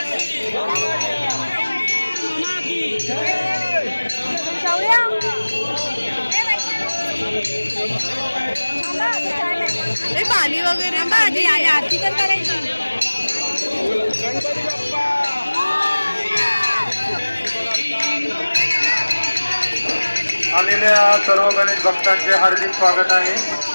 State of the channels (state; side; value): inverted; both; correlation -1.00